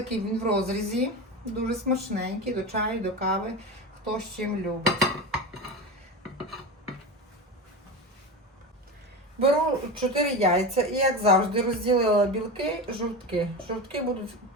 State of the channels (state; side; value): normal; both; correlation 0.24